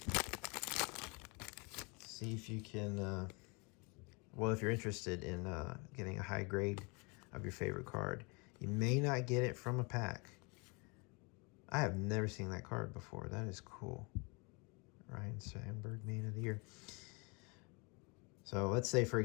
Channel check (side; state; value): right; quieter; 31.0 dB